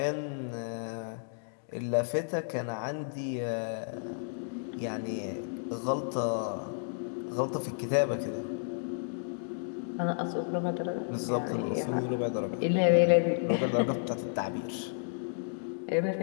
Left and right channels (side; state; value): right; silent; digital silence